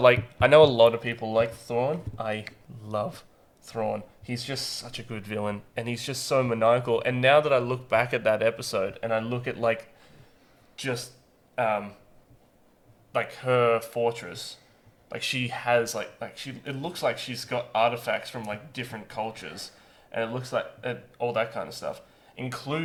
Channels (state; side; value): identical; both; correlation 1.00